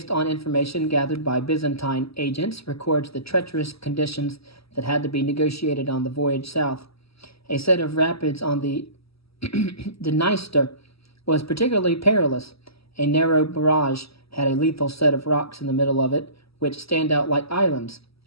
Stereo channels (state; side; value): late; right; 0.76 ms